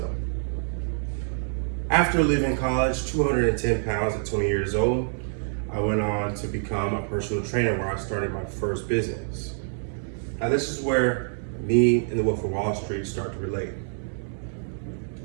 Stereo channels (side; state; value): left; silent; 61 dB below the other